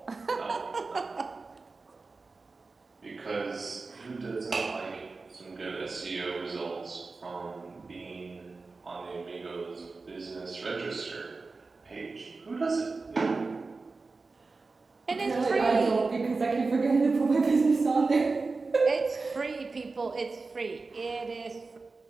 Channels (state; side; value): quieter; left; 3.9 dB